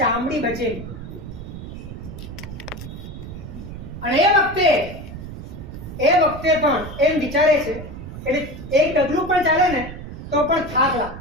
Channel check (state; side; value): noise; right; rumble, 11 dB below the sound